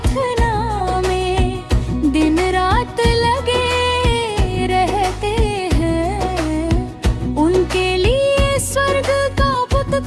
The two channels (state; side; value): identical; both; correlation 1.00